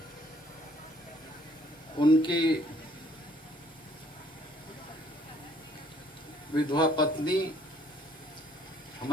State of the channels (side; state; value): both; normal; correlation 0.61